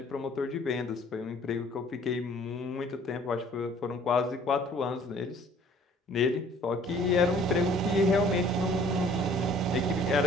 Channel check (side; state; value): both; normal; correlation 0.55